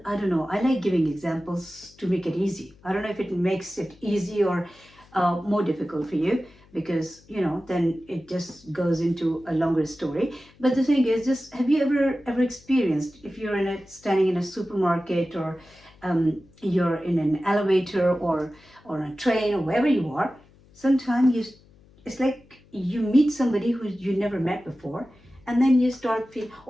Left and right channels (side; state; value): left; noise; hum, 28 dB below the sound